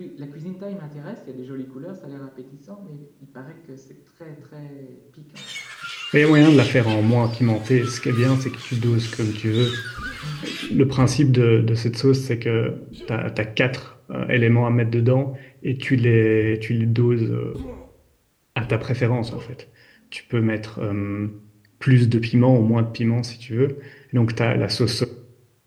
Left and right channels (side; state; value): both; identical; correlation 1.00